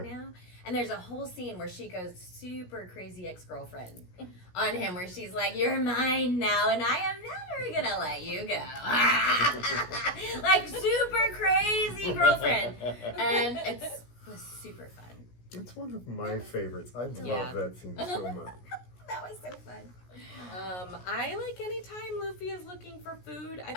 now, and there's a whole scene where she goes super crazy ex-girlfriend on him, where she's like, "You're mine now, and I am never gonna let you go." Like super crazy girlfriend, and it was super fun. It's one of my favorites. I love Yeah. that scene so much. That was so fun. I like anytime Luffy is looking for food. I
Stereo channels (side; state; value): right; late; 17 ms